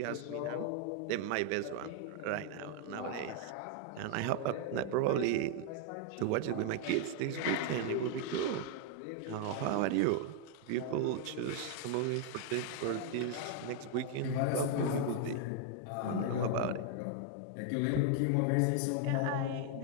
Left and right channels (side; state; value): both; different; correlation 0.00